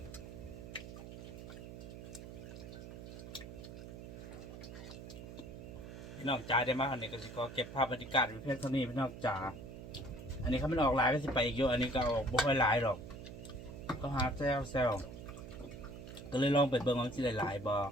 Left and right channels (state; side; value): noise; right; hum, 11 dB below the sound